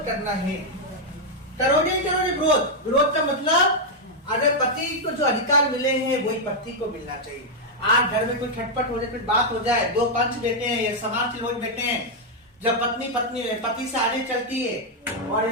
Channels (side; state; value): both; normal; correlation -0.02